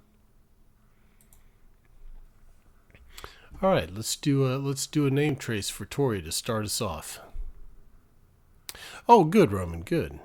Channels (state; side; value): identical; both; correlation 1.00